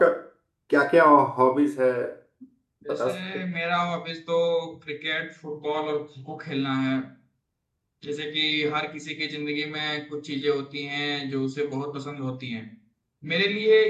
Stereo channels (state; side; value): identical; both; correlation 1.00